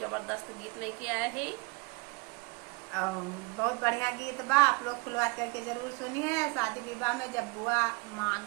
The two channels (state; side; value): quieter; left; 28.1 dB